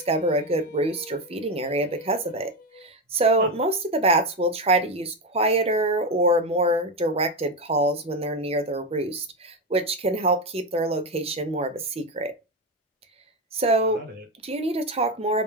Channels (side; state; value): both; normal; correlation 0.13